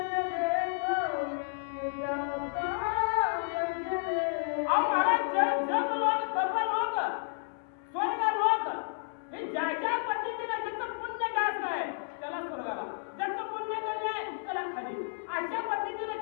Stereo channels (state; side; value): silent; right; 57 dB below the other